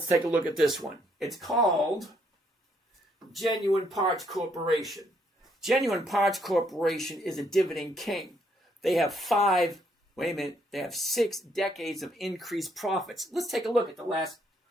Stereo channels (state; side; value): normal; both; correlation 0.71